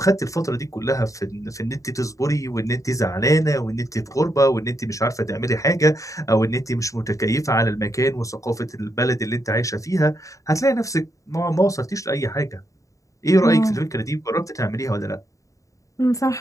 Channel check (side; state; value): right; late; 0.16 ms